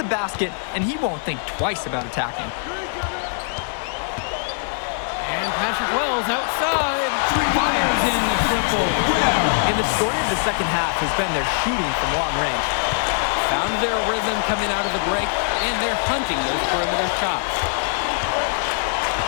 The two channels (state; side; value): silent; right; digital silence